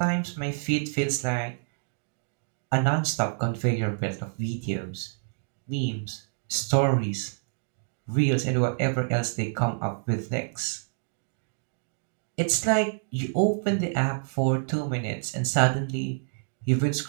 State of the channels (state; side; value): silent; left; digital silence